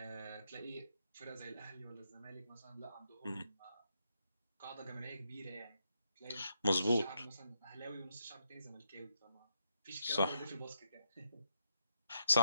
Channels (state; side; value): inverted; both; correlation -0.80